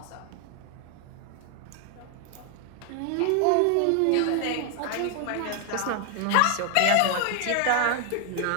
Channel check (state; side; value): different; both; correlation 0.00